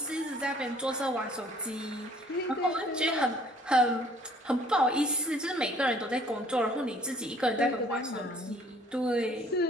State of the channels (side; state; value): both; normal; correlation 0.56